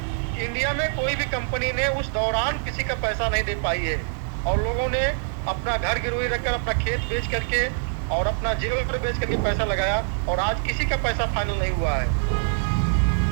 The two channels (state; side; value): silent; left; digital silence